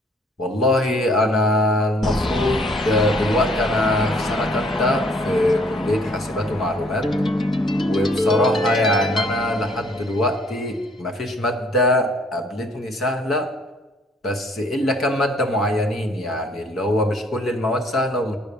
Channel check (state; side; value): normal; both; correlation 0.61